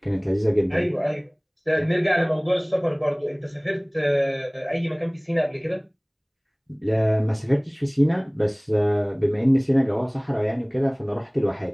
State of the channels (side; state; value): both; identical; correlation 1.00